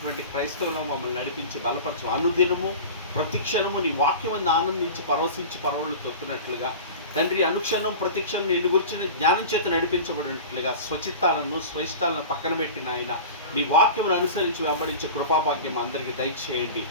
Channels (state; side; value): inverted; both; correlation -0.34